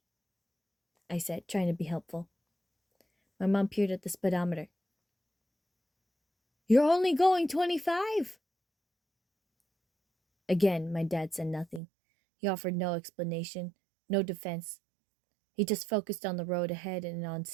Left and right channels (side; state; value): left; drops out; at 11.8 s